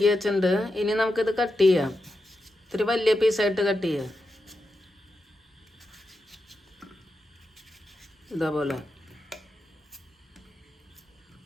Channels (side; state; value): both; normal; correlation 0.88